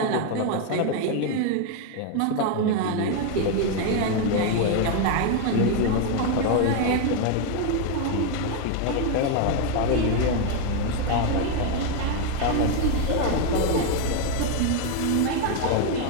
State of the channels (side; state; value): both; different; correlation 0.01